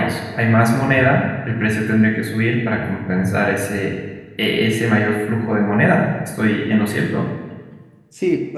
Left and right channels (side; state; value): both; identical; correlation 1.00